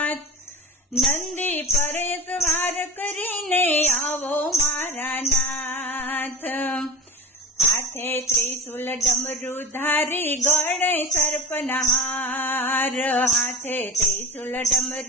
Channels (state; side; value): normal; both; correlation 0.31